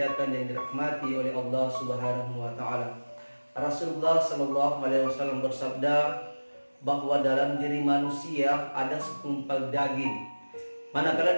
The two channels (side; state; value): both; inverted; correlation -1.00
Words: dan dirahmati oleh Allah Subhanahu wa taala. Rasulullah sallallahu alaihi wasallam bersabda bahwa dalam diri manusia ada segumpal daging. Manakala